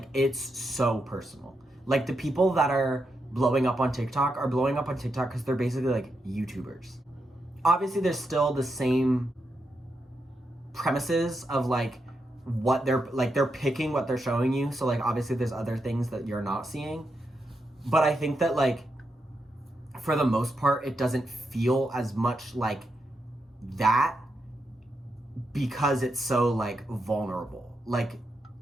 it's so personal. Like, the people that are blowing up on TikTok are blowing up on TikTok because they're basically like YouTubers. Obviously, there's still the same premises of like what they're picking what they're showing you. So like obviously there's other things that you're not seeing. But I think that like for the most part it doesn't feel as much like that because it's so like vulnerable. Like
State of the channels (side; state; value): both; normal; correlation 0.84